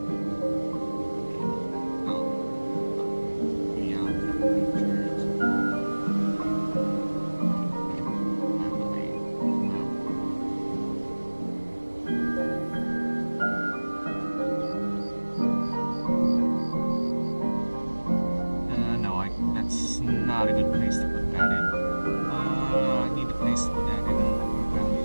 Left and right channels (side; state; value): both; inverted; correlation -1.00